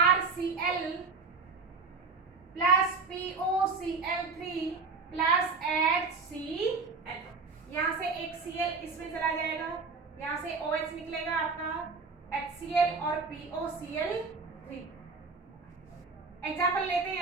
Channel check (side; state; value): left; quieter; 4.4 dB